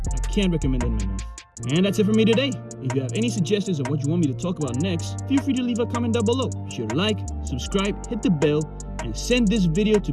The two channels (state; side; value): identical; both; correlation 1.00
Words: I can't recommend them enough. And that's it for me today. If you have any suggestions of what you want me to talk about next, feel free to leave a comment down below. Be sure to like, subscribe, hit the bell, and send this video to